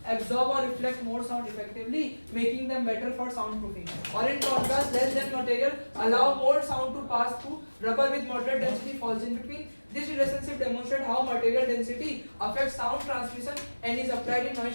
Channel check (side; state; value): both; inverted; correlation -1.00